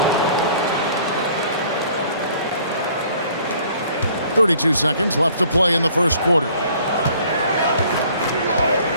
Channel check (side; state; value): both; inverted; correlation -0.56